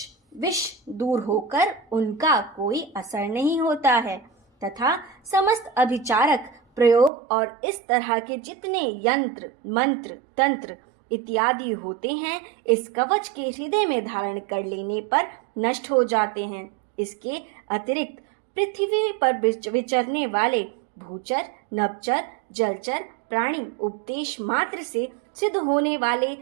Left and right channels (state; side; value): drops out; left; at 7.1 s